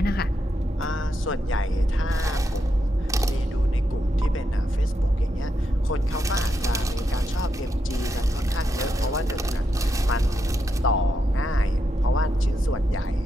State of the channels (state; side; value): normal; both; correlation 0.83